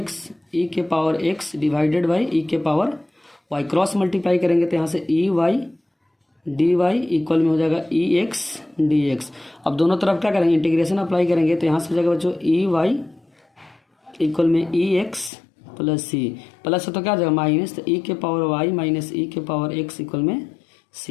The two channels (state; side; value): drops out; right; at 15.3 s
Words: e⁻x divided by e⁻y, cross multiply करेंगे तो यहाँ से dy इक्वल में हो जाएगा ex dx। अब दोनों तरफ क्या करेंगे इंटीग्रेशन अप्लाई करेंगे, तो यहाँ से हो जाएगा बच्चों ey इक्वल में ex + c, प्लस है तो क्या हो जाएगा माइनस, तो e⁻y - e⁻x इक्वल में